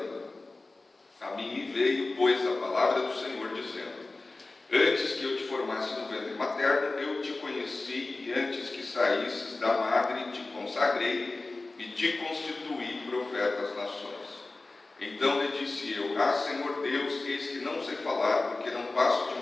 A mim me veio, pois, a palavra do Senhor, dizendo: antes que eu te formasse no ventre materno, eu te conheci, e antes que saísses da madre, te consagrei e te constituí profeta às nações. Então lhe disse eu: ah, Senhor Deus, eis que não sei falar, porque não passo de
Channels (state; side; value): quieter; right; 3.3 dB